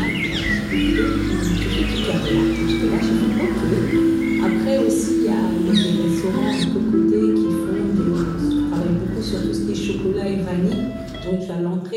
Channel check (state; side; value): identical; both; correlation 1.00